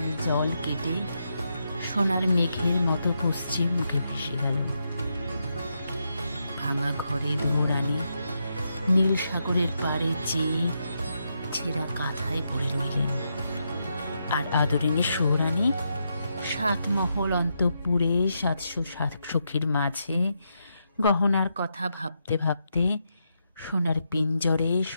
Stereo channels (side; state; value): both; inverted; correlation -0.83